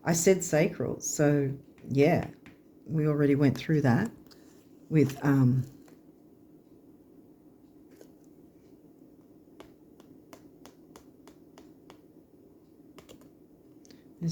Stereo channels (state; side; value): identical; both; correlation 1.00